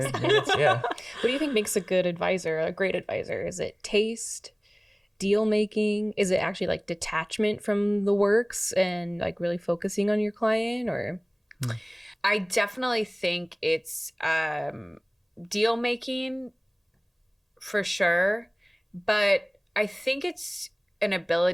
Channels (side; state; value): both; identical; correlation 1.00